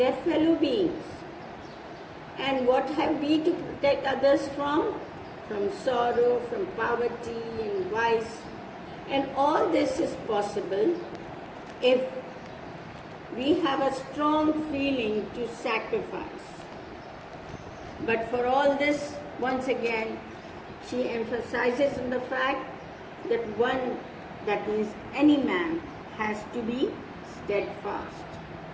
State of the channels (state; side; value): identical; both; correlation 1.00